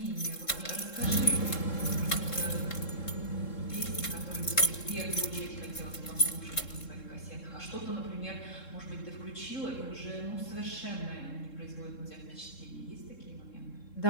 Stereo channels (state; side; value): late; right; 3.7 ms